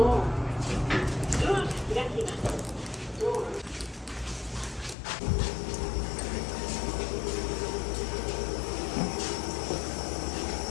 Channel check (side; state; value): right; drops out; at 5.0 s